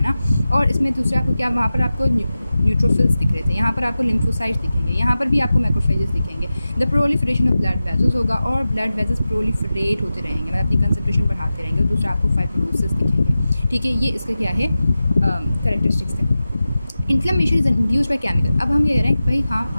ना। और इसमें दूसरा आपको क्या, वहाँ पर आपको न्यूट्रोफिल्स दिख रहे थे, यहाँ पर आपको लिम्फोसाइट्स दिखेंगे, यहाँ पर भी आपको मैक्रोफेजेस दिखेंगे। The proliferation of blood vessels होगा और ब्लड वेजल्स प्रोलिफरेट होते रहेंगे, मतलब अपनी कंसंट्रेशन बढ़ाते रहेंगे। और दूसरा आपको फाइब्रोसिस दिखेंगे, ठीक है। ये इसका क्या है कैरेक्टरिस्टिक्स है। Inflammation is induce by chemical. अब हम ये कह रहे हैं कि भाई हाँ,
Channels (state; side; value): inverted; both; correlation -0.94